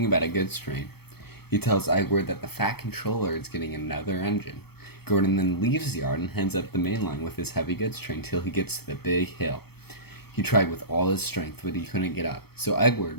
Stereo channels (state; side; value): late; right; 0.97 ms